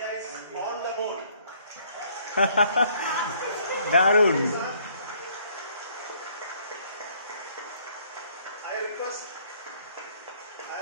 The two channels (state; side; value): inverted; both; correlation -0.63